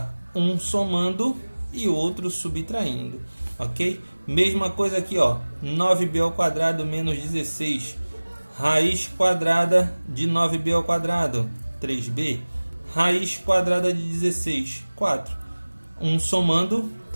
um somando e outro subtraindo, ok? Mesma coisa aqui, ó, 9b ao quadrado menos 16, raiz quadrada de 9b ao quadrado, 3b, raiz quadrada de 16, 4, um somando,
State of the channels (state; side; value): inverted; both; correlation -1.00